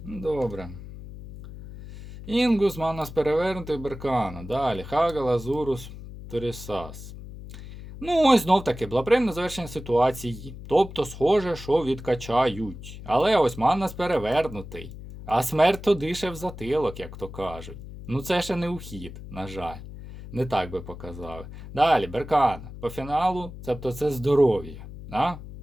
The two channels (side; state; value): left; noise; hum, 13 dB below the sound